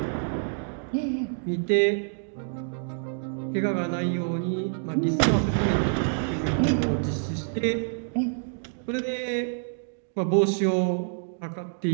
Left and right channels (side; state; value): left; silent; digital silence